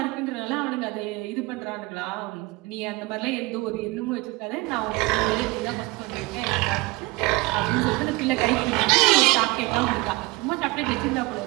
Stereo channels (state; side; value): quieter; left; 22.8 dB